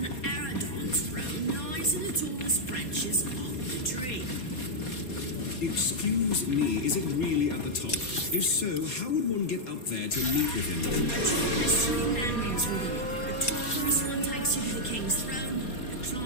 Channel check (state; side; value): late; right; 4.2 ms